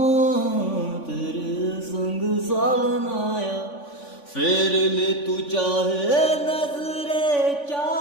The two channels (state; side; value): late; right; 3.5 ms